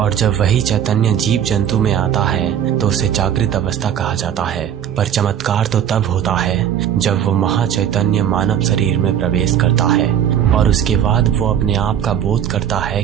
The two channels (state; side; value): quieter; left; 9.5 dB